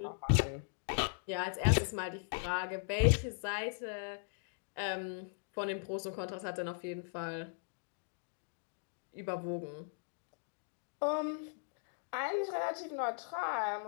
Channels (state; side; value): silent; right; digital silence